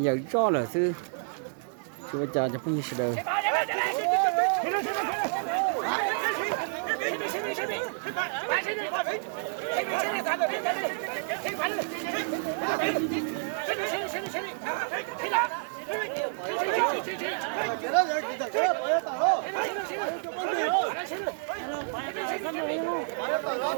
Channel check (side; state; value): left; silent; 58 dB below the other